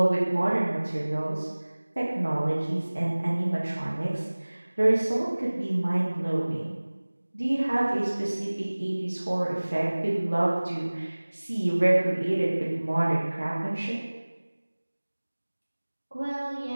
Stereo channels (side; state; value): both; inverted; correlation -1.00